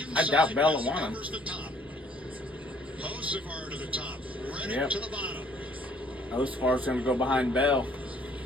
I doubt inside, Bell will Bell want him. covers the top. Hocevar to the top, Reddick Yep. to the bottom. Hocevar's going to go behind Bell.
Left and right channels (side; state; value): both; normal; correlation 0.60